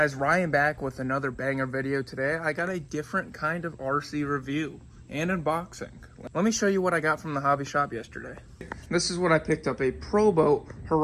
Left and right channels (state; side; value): identical; both; correlation 1.00